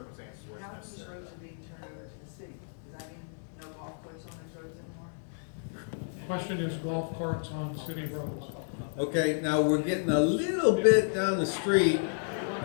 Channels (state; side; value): silent; right; digital silence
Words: where it's How many necessary. roads are being turned over to the city? Does that mean no golf course on those roads anymore? Question is golf carts on city roads. Okay, now we're getting a little bit down the street. We're